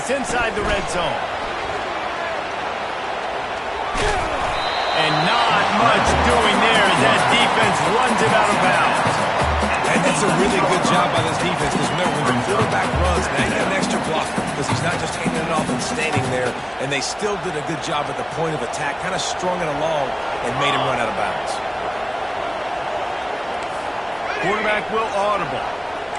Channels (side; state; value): both; identical; correlation 1.00